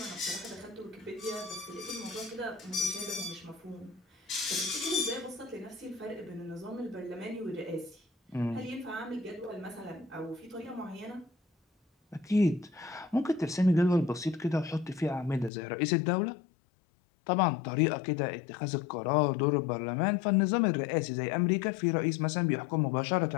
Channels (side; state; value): right; drops out; at 15.5 s